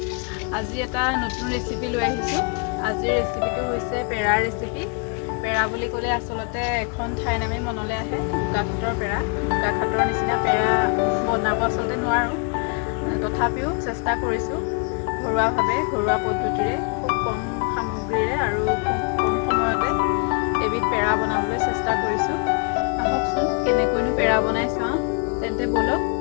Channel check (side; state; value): right; quieter; 35.6 dB